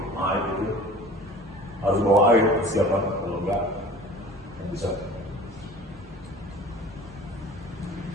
air itu harus bawa air persiapan, kalau enggak yang bisa.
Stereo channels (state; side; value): normal; both; correlation 0.43